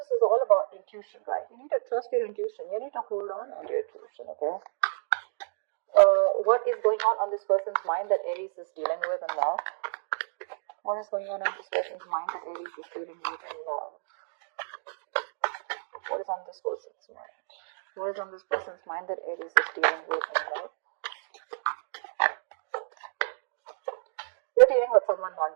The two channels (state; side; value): silent; left; digital silence